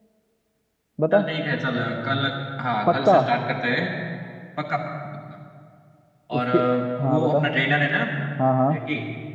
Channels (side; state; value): both; identical; correlation 1.00